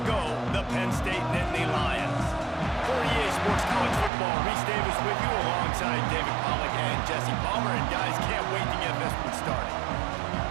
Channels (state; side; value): drops out; left; at 4.1 s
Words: ago, the Penn State Nittany Lions. For EA Sports College Football, Reese Davis with you alongside David Pollack and Jesse Palmer. And guys, can't wait to get this one started.